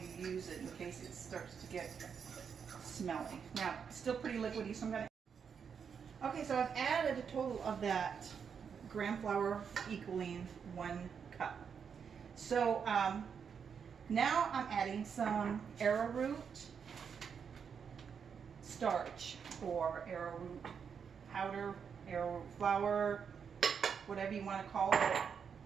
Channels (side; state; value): left; quieter; 6.8 dB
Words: use it in case it starts to get smelly. Now, it's still pretty liquidy, so I'm going to... Okay, so I've added a total of that gram flour equaling 1 cup. So now I'm adding some arrowroot starch or arrowroot powder, arrowroot flour, whatever you want to call it.